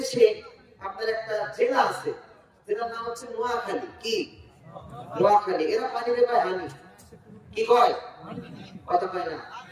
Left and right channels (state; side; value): identical; both; correlation 1.00